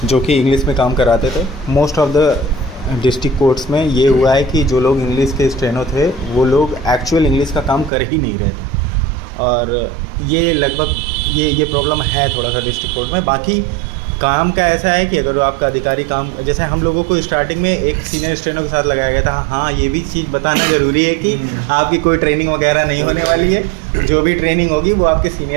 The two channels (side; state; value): left; drops out; at 7.9 s